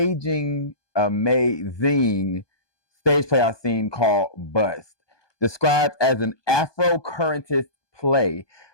stage play I've seen called Bust, described as an Afrocurrentist play.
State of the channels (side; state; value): right; late; 1.2 ms